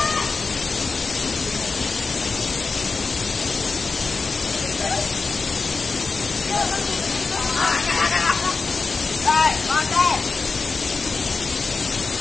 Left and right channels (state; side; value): quieter; right; 4.3 dB